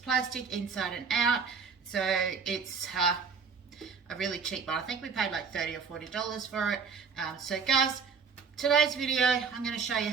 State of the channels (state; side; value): quieter; left; 5.8 dB